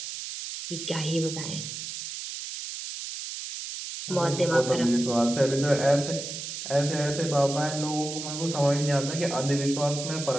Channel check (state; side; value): noise; right; hiss, 7 dB below the sound